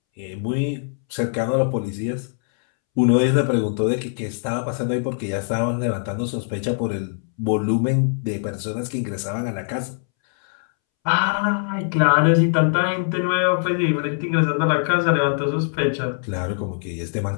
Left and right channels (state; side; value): silent; right; 64 dB below the other